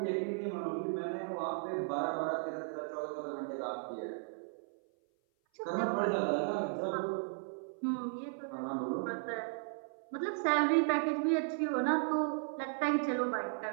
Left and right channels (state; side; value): silent; left; 54 dB below the other